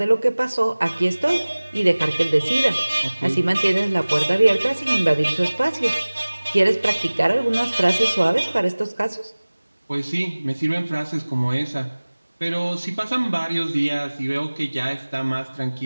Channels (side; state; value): both; inverted; correlation -1.00